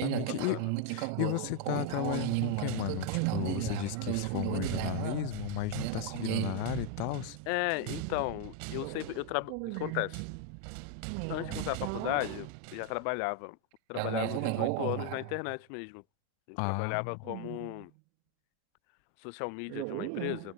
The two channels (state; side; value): different; both; correlation 0.01